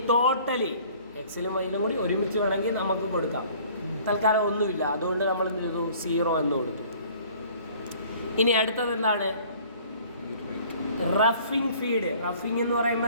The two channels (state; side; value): inverted; both; correlation -0.52